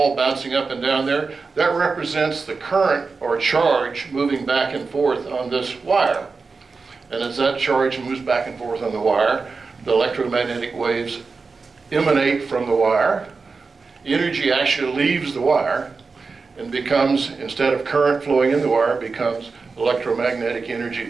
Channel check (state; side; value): quieter; left; 4.5 dB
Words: bouncing up and down there. That represents the current or charge moving back and forth on this wire. And as that charge moves back and forth on the wire, the electromagnetic waves emanate from the wire. Energy actually leaves the wire and becomes, instead of current flowing in the wire, becomes electromagnetic energy